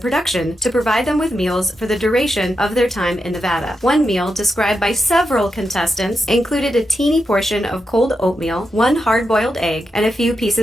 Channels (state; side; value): normal; both; correlation 0.87